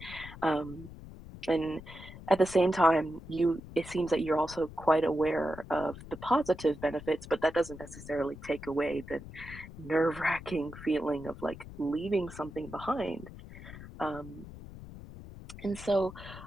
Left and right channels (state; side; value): noise; left; rumble, 14 dB below the sound